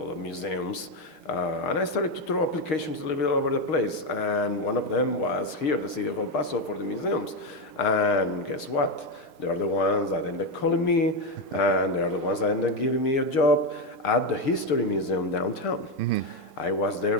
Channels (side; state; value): right; late; 4.6 ms